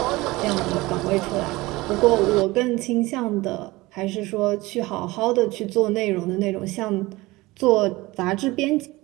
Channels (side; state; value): left; quieter; 20.6 dB